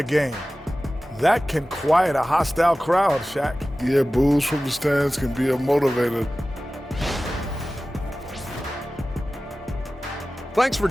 game. That can quiet a hostile crowd, Shaq. Yeah, boos from the stands can be a motivator. Thanks for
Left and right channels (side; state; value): both; normal; correlation 0.96